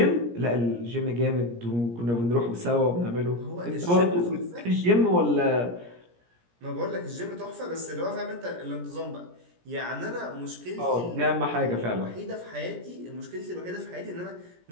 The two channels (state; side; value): late; left; 17 ms